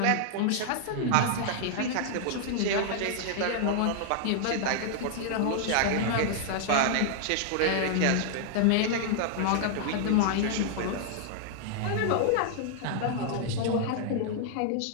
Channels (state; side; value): different; both; correlation -0.01